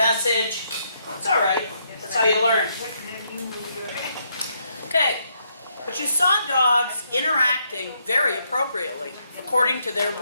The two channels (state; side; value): inverted; both; correlation -0.75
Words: It's all right. That's how you learn. Okay. But But you saw dogs interacting very appropriately, according to their